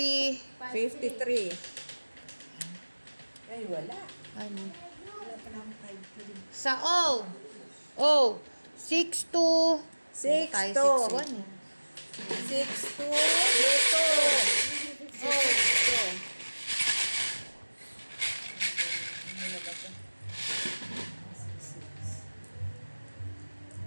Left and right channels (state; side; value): inverted; both; correlation -1.00